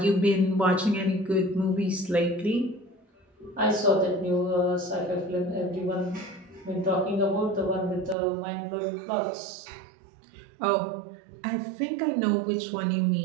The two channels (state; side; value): drops out; left; at 8.2 s